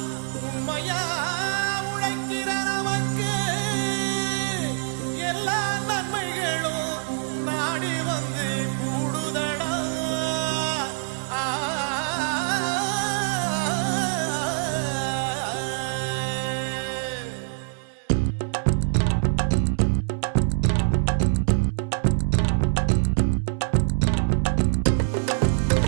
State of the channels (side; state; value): left; silent; digital silence